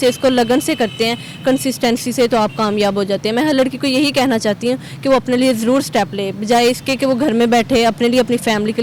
इसको लगन से करते हैं, कंसिस्टेंसी से, तो आप कामयाब हो जाते हैं। मैं हर लड़की को यही कहना चाहती हूँ कि वो अपने लिए ज़रूर स्टेप ले, बजाय इसके कि वो घर में बैठे, अपने लिए, अपनी फैमिली के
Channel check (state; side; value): identical; both; correlation 1.00